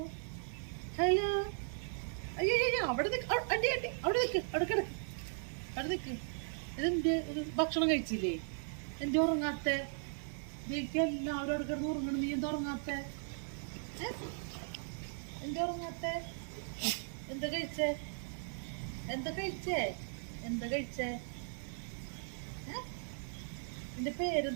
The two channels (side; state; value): left; silent; 53 dB below the other